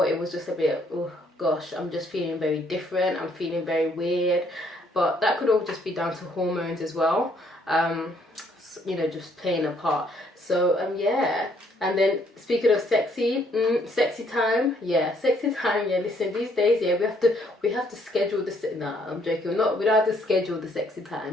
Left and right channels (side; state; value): both; normal; correlation 0.67